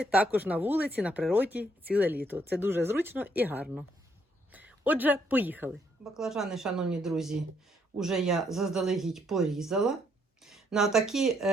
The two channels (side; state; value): both; normal; correlation 0.71